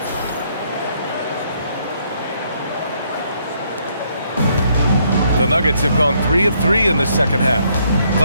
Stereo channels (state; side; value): inverted; both; correlation -0.70